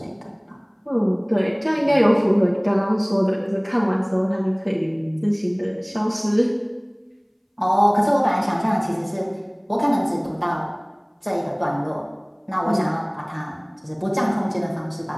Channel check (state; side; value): identical; both; correlation 1.00